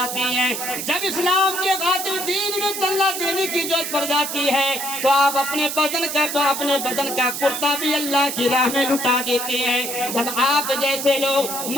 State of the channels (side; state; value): right; noise; hiss, 5 dB below the sound